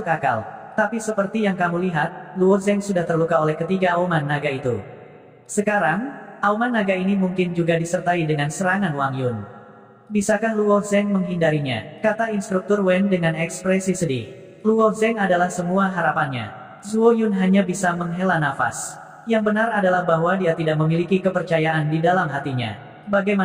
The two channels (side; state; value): both; identical; correlation 1.00